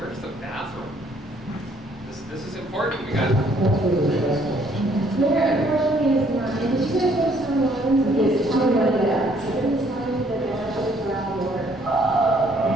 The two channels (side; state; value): both; normal; correlation 0.64